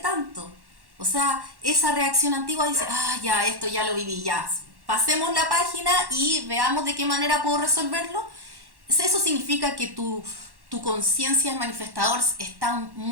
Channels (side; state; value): left; late; 1.1 ms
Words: O sea, esa reacción antigua dice, ya, esto ya lo viví, ya. Pasemos la página y veamos de qué manera puedo resolverlo. Eso significa que tu conciencia de manifestador está